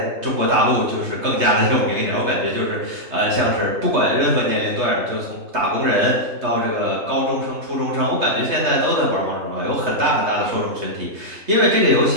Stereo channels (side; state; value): left; late; 3.2 ms